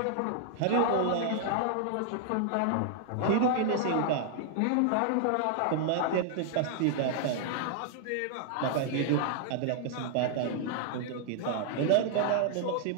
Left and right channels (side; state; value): both; different; correlation -0.01